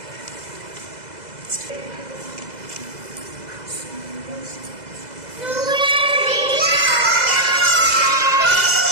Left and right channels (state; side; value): late; left; 2.0 ms